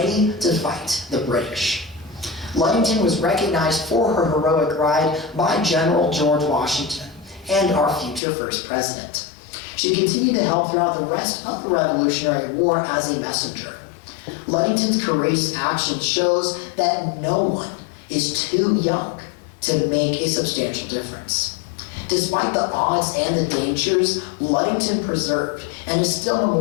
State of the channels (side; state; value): right; drops out; at 8.2 s